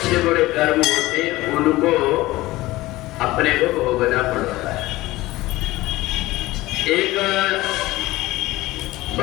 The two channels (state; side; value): quieter; right; 18.4 dB